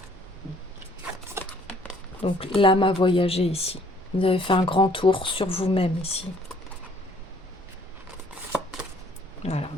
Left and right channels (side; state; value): both; normal; correlation 0.59